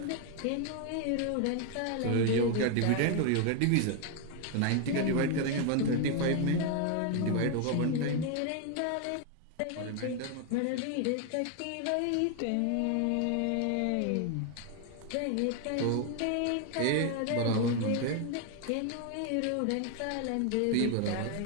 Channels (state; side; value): different; both; correlation 0.01